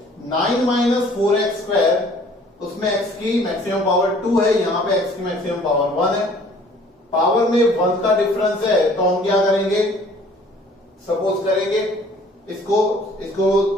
9 माइनस 4x स्क्वायर, उसमें x की मैक्सिमम पावर 2 है, यहां पे x की मैक्सिमम पावर 1 है, पावर में 1 का डिफरेंस है, तो हम क्या करेंगे, सपोज करेंगे इसको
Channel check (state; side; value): normal; both; correlation 0.54